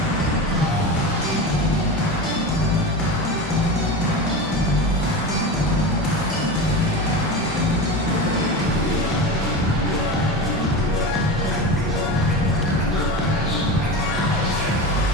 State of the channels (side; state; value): both; normal; correlation 0.25